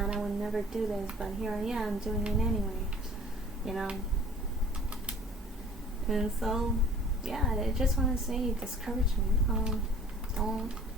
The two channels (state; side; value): normal; both; correlation 0.49